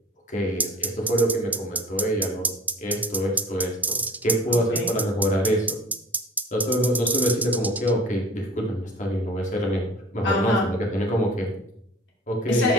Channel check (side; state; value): both; normal; correlation 0.44